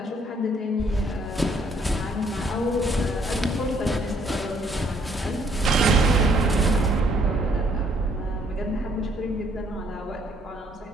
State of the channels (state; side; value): normal; both; correlation 0.66